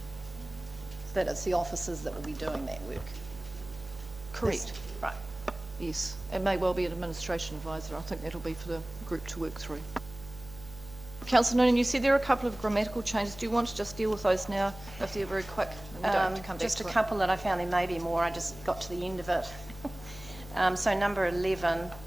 That it's the officers that will be doing that work. Correct. Right. Yes. It may well be an administration advisor. I think that'll be for the group to work through. Councillor Noonan, you said there are a couple of grammatical changes. Do you want to just deal with those now, if they're very quick, and we don't have to come back Just to a it. couple that I found, there may be more, I just got to the end of it. So number 11,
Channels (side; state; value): right; noise; hum, 16 dB below the sound